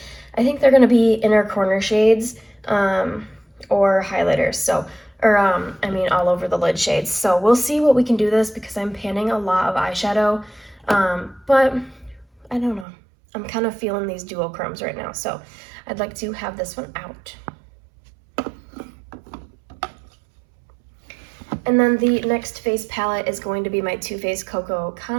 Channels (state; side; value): drops out; left; at 12.9 s